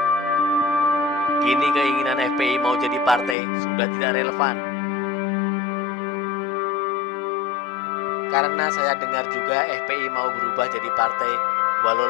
Kini keinginan FPI mau jadi partai sudah tidak relevan. Karena saya dengar juga FPI mau berubah jadi partai, walau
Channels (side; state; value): right; drops out; at 3.4 s